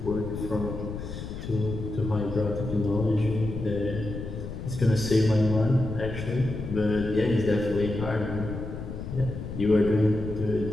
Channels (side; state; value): left; noise; rumble, 8 dB below the sound